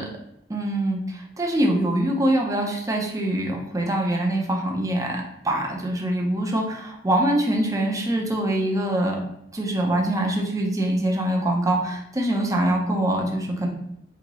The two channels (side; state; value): both; normal; correlation 0.68